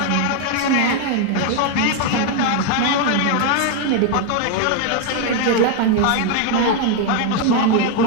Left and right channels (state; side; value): different; both; correlation 0.01